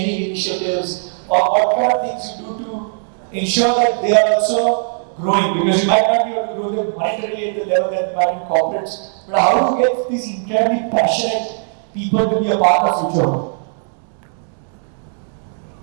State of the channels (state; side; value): silent; left; digital silence